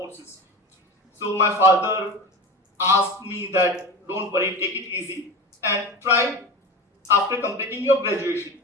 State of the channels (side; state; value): both; normal; correlation 0.31